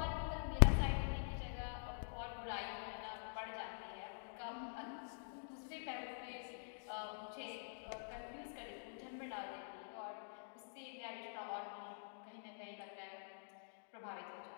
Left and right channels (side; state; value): right; silent; digital silence